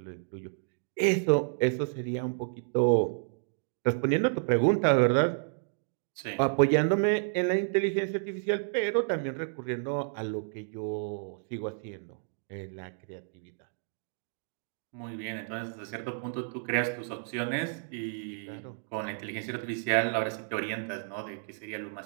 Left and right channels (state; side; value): silent; left; digital silence